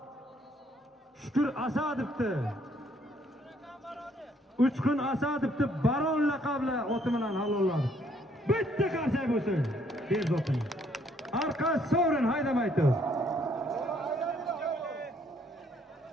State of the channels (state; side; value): normal; both; correlation 0.66